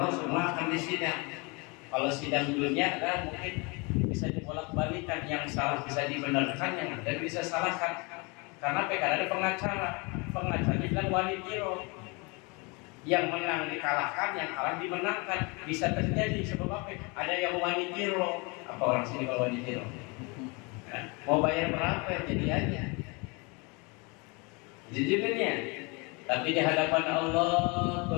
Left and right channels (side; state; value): right; quieter; 29.4 dB